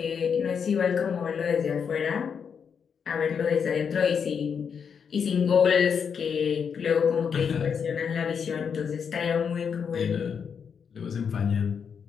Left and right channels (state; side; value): quieter; right; 6.8 dB